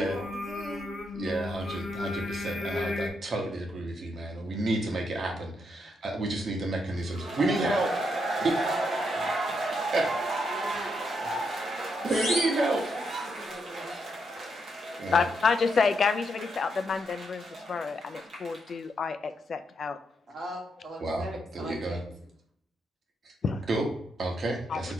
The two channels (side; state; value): both; normal; correlation 0.79